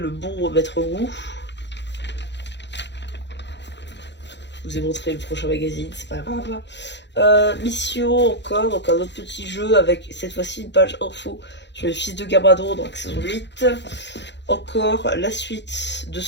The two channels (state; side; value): late; right; 0.51 ms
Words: bon Maître Wu. Je vous ai montré le prochain magazine, c'est pas grave. Mission encore, donc un autre petit jeu avec cette fois-ci une page info sur les fils de Gabradon, donc saison 8. Encore la suite de